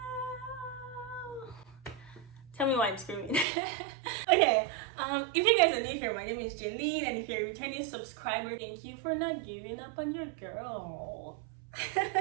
Tell me why I'm screaming. Okay, if you guys are new here, my name is Jaylene, and if you're a returning subscriber, thank you for not giving up on your girl.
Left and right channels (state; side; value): drops out; left; at 3.5 s